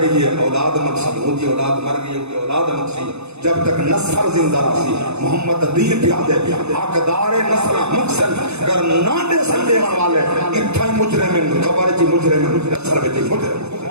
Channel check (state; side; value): late; left; 0.81 ms